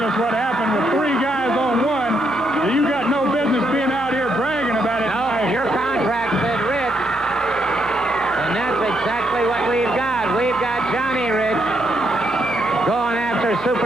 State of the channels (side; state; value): both; normal; correlation 0.77